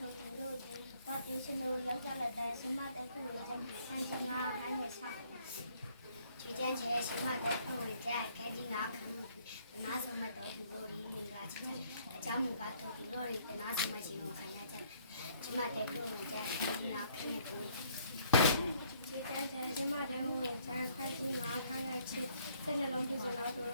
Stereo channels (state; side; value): inverted; both; correlation -0.65